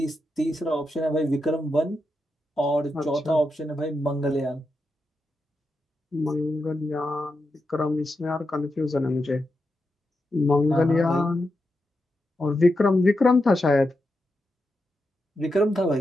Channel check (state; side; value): normal; both; correlation 0.87